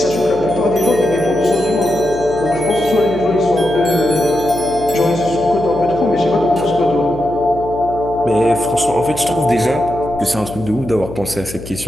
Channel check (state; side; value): noise; left; hum, 13 dB below the sound